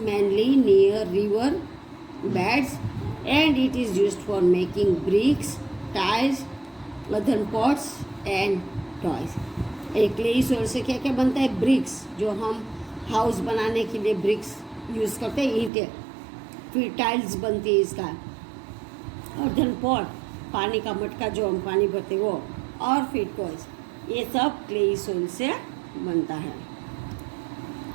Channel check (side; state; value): left; drops out; at 15.7 s